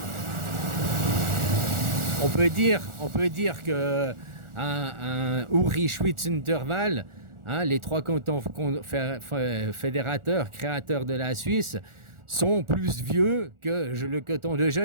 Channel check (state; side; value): late; left; 1.4 ms